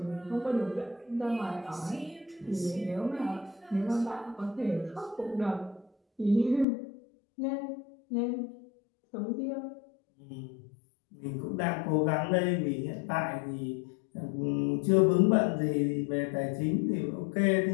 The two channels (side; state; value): right; drops out; at 6.7 s